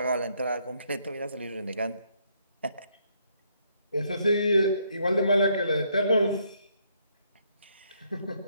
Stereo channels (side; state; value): both; inverted; correlation -0.72